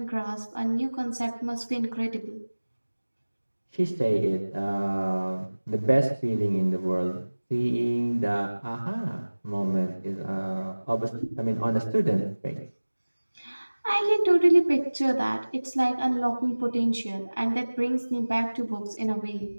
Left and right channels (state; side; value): inverted; both; correlation -1.00